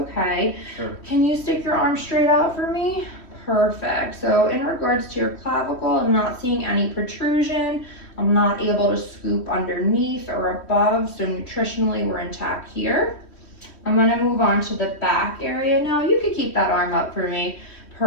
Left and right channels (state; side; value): late; right; 3.1 ms